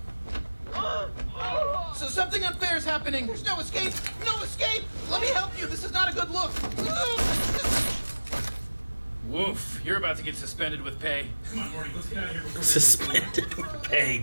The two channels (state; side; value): inverted; both; correlation -1.00